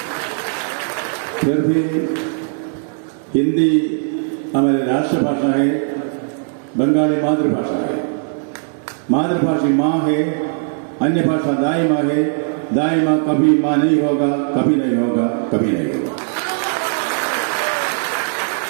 फिर भी हिंदी हमारी राष्ट्रभाषा है, बंगाली मातृभाषा है। मातृभाषा माँ है, अन्य भाषा दाई माँ है। दाई माँ कभी माँ नहीं होगा, कभी नहीं होगा, कभी नहीं होगा।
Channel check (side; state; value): left; silent; digital silence